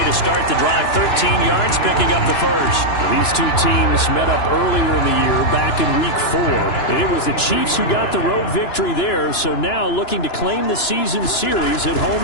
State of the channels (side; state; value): right; late; 2.9 ms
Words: to start the drive. 13 yards, picking up the first. These two teams met up earlier in the year, back in Week 4. And it was the Chiefs who got the road victory there, so now looking to claim the season series at home